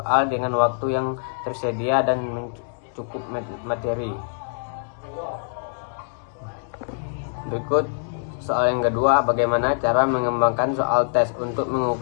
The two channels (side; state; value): right; silent; 63 dB below the other